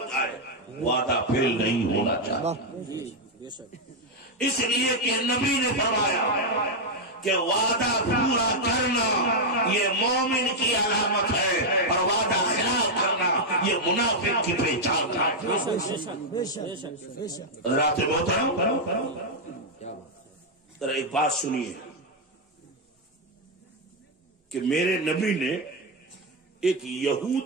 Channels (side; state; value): both; normal; correlation 0.00